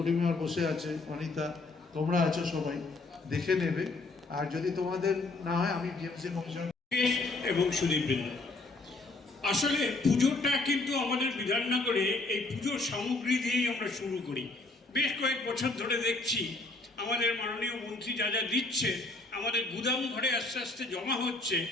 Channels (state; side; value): quieter; right; 3.3 dB